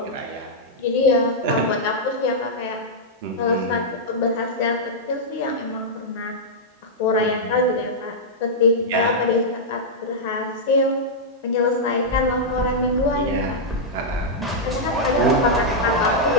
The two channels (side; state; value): both; normal; correlation -0.07